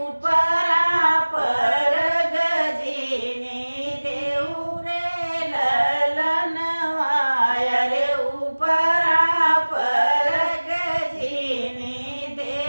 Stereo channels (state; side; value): inverted; both; correlation -1.00